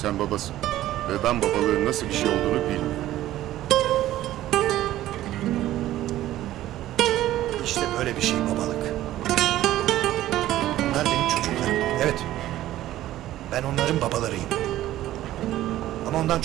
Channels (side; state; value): left; quieter; 14.2 dB